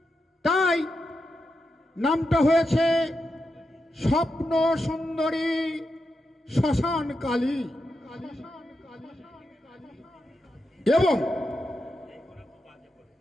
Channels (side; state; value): both; normal; correlation 0.87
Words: তাই নামটা হয়েছে স্বপ্ন সুন্দরী শ্মশান কালী। এবং